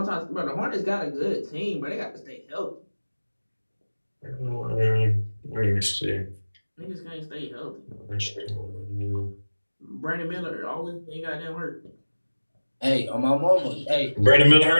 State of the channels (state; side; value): inverted; both; correlation -1.00